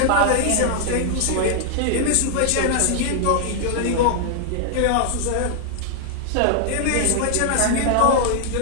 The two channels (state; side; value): different; both; correlation -0.01